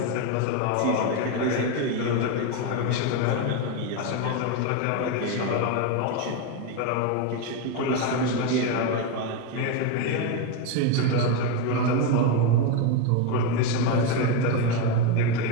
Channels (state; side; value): different; both; correlation 0.03